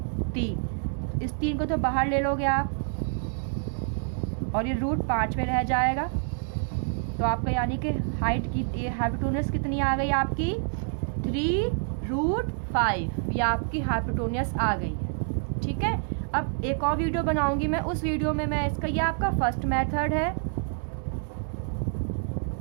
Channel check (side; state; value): left; silent; 60 dB below the other